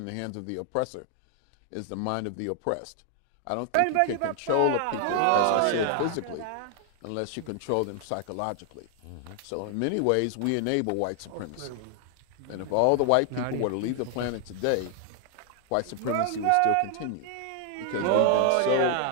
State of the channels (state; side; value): different; both; correlation 0.00